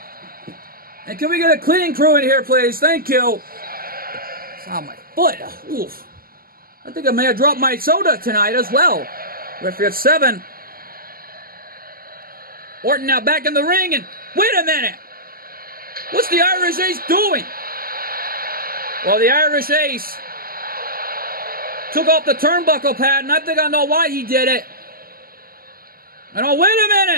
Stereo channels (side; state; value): left; late; 0.42 ms